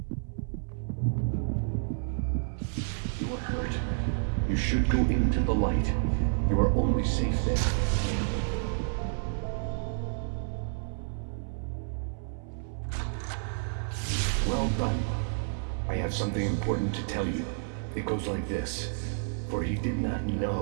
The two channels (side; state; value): left; silent; 58 dB below the other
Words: You are hurt. You should go into the light. You are only safe there. Well done. I have something important to tell you. It goes like this. For he did not